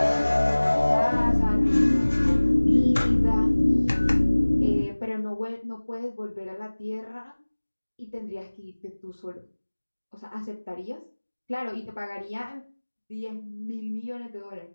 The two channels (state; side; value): inverted; both; correlation -1.00